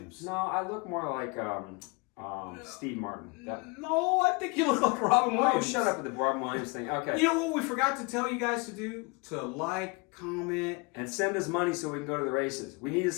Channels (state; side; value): quieter; right; 29.2 dB